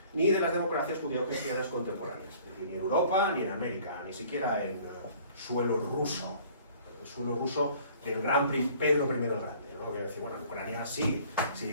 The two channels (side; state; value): both; inverted; correlation -0.53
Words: ni de las democracias judío-cristianas contemporáneas, ni en Europa, ni en América, ni siquiera en suelo ruso del gran Pedro I el Grande, ¿no? Que decir, bueno, en Ucrania sí,